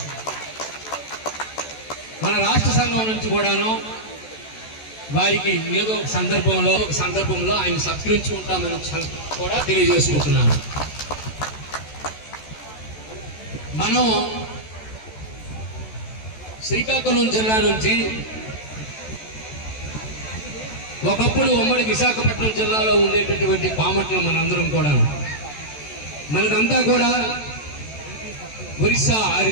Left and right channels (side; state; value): right; late; 14 ms